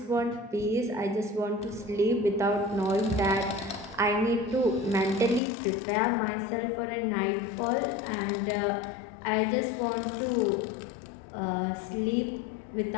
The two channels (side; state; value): right; drops out; at 5.4 s